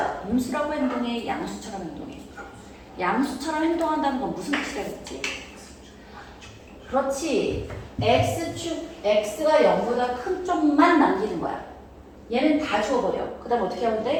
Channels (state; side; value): identical; both; correlation 1.00